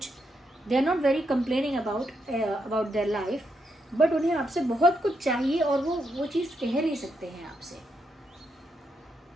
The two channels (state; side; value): normal; both; correlation 0.80